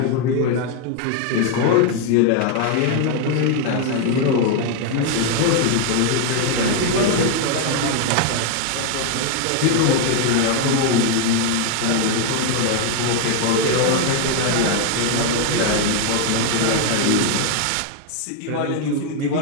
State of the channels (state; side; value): different; both; correlation 0.01